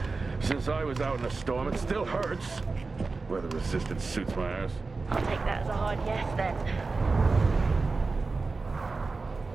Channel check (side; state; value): left; quieter; 4.0 dB